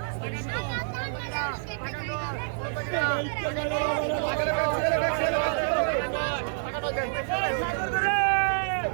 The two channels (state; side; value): silent; left; digital silence